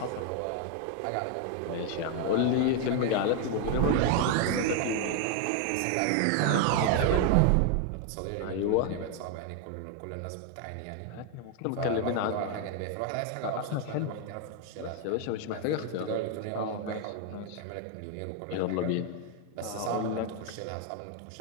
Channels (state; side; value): different; both; correlation 0.01